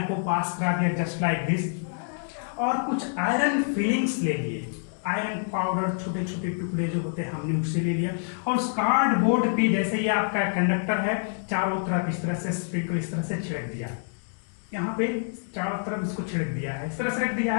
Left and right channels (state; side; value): silent; right; digital silence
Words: को पास करा दिया जस्ट लाइक दिस, और कुछ आयरन फिलिंग्स ले लिए. आयरन पाउडर छोटे छोटे टुकड़े जो होते हैं हमने उससे ले लिया और उस कार्डबोर्ड पे जैसे ये आपका कंडक्टर है चारों तरफ इस तरह से स्प्रिंकल इस तरह से छिड़क दिया. यहाँ पे चारों तरफ इसको छिड़क दिया है, इस तरह से रख दिया